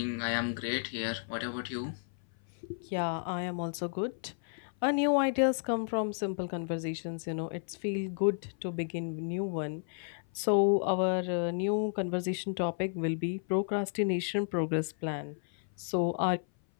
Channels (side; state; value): right; silent; 55 dB below the other